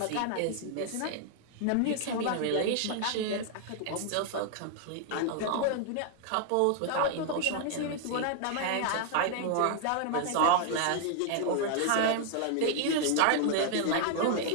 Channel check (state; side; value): different; both; correlation 0.00